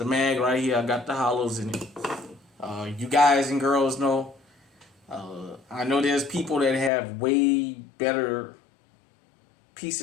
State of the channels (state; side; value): drops out; right; at 6.9 s